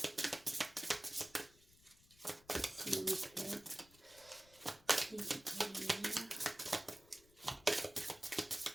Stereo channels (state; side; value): noise; left; rumble, 26 dB below the sound